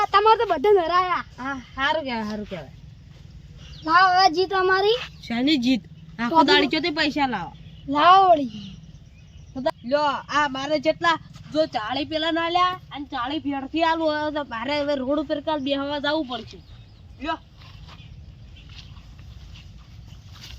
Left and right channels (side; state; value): both; identical; correlation 1.00